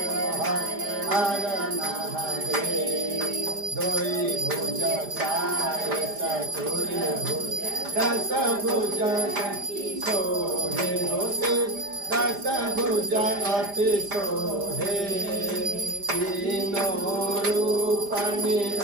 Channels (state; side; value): late; left; 5.0 ms